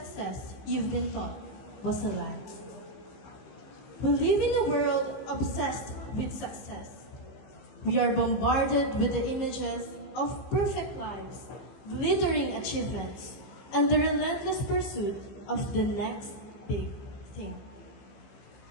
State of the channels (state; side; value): late; right; 15 ms